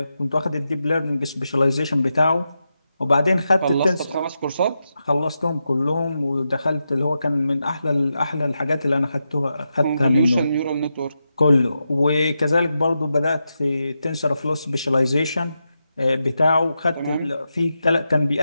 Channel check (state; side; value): inverted; both; correlation -0.88